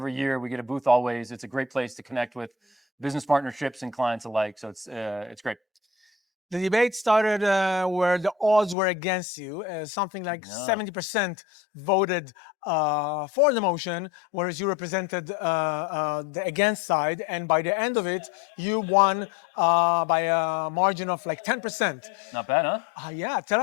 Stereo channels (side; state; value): right; drops out; at 8.8 s